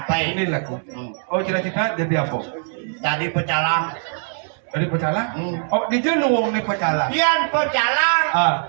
Ini lagu. Oh, cita-cita jadi apa? Tadi pecalang. Dari pecalang? Hmm. Oh, di jenuang nih pecalang. Pian pecalang, Ah,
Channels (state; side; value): silent; left; 60 dB below the other